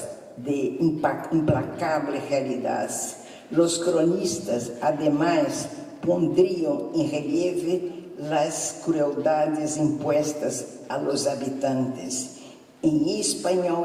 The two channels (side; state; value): both; identical; correlation 1.00